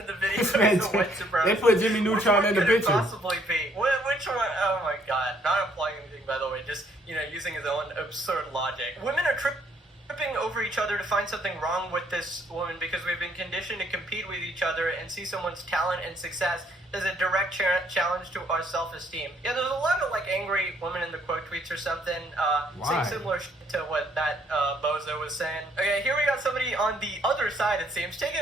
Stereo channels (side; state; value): both; normal; correlation 0.66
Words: the video is a white supremacist. They put Jimmy Neutron in the picture. Which one could it possibly be? Which one? Oh my god! Not implying anything, by the way. Just using his own absurd logic. Women are tripping over each other to find something wrong with this woman because we've been conditioned to compete with each other and see someone's talent and success as a direct challenge to our self-esteem. Yeah, there's a lot of like angry women in the quote tweets or something saying similar to what that bozo was saying. Okay, here we got somebody on the other side, it seems, taking